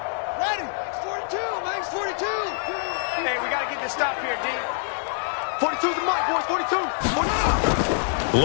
Ready. Max 42. Hey, we got to get this stop here, D. 42's the mic, boys. 42.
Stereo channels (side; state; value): right; silent; 62 dB below the other